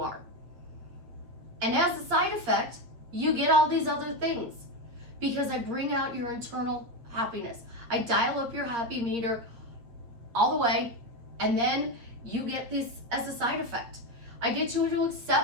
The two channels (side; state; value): left; late; 8.4 ms